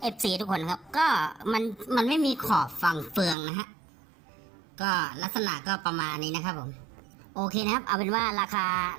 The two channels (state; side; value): drops out; left; at 3.4 s